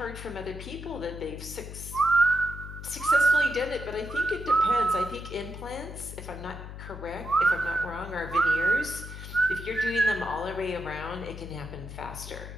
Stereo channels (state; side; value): noise; left; hum, 10 dB below the sound